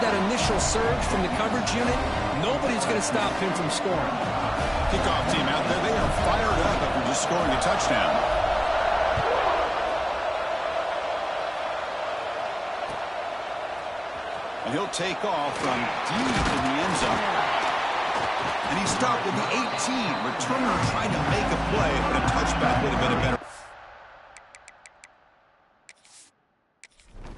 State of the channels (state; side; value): identical; both; correlation 1.00